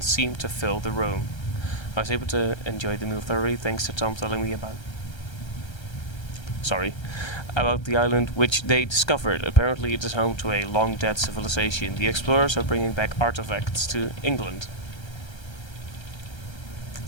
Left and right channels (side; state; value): right; late; 1.3 ms